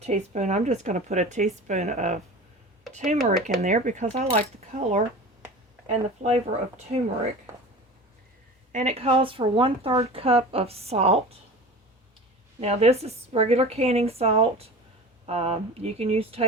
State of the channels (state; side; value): normal; both; correlation 0.36